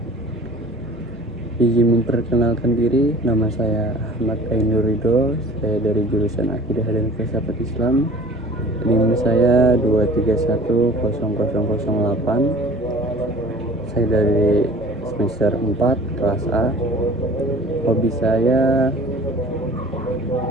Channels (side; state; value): both; normal; correlation 0.45